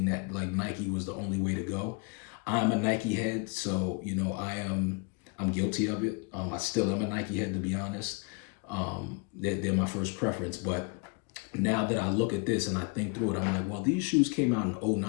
that like Nike was the only way to go. I'm a Nike head, so I'm guilty of it. I still am a Nike head, to be honest. They're my first preference, but now that I look at this and I think through it, I'm like, well, these shoes came out in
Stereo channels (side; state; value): right; quieter; 30.7 dB